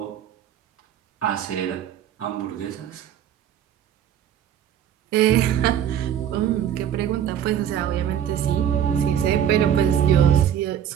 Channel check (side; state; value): left; quieter; 9.8 dB